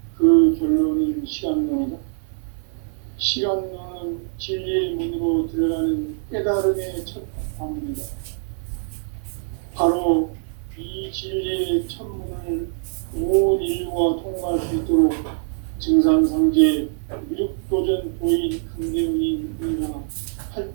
그 결론은 시간론이다. 시간론은 진리의 문으로 들어가는 깨달음의 첫 관문이다. 바로 이 진리의 첫 문을 온 인류가 통과할 수 있도록 증산상제 미륵도전 도인 강대훈이 우리가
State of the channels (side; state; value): left; silent; 56 dB below the other